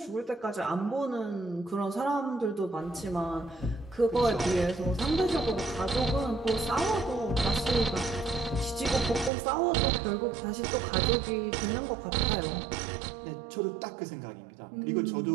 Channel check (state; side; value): drops out; left; at 9.3 s